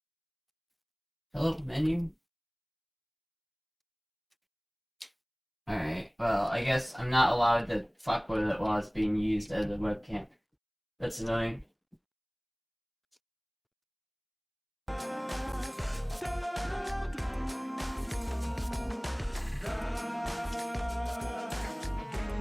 Hello, menu? Alright, well, I guess I'm not allowed to fuck with it while it's being used as a webcam. That's annoying.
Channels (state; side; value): identical; both; correlation 1.00